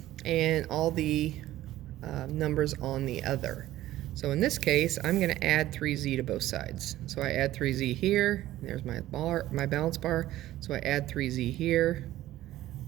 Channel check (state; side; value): quieter; left; 14.8 dB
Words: and all the numbers on the other. So in this case, I'm going to add 3z to both sides. So I add 3z here. There's my bar, my balance bar. So I add 3z here.